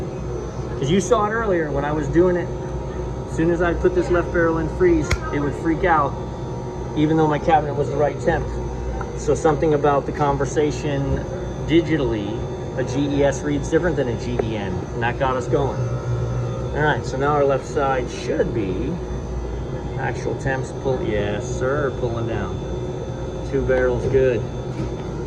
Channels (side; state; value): both; identical; correlation 1.00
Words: Because you saw it earlier when I was doing it. As soon as I put this left barrel in freeze, it would freak out, even though my cabinet was the right temp. So something about the conversation digitally, a GES reads different than a GEN, and that got us going. All right, so now our left side should be actual temps pull. Yes, sir, pulling down. 2 barrels good.